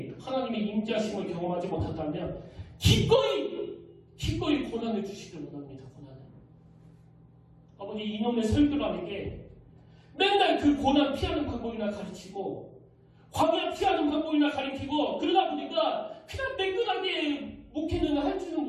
하나님의 임재하심을 경험하지 못한다면 기꺼이 고난을 주시길 원합니다. 고난을. 아버지 이놈의 설교라는 게 맨날 그 고난 피하는 방법이나 가르치고 광야 피하는 방법이나 가르치고 그러다 보니까 그냥 매끈하게 목회는 할 줄은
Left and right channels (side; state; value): both; identical; correlation 1.00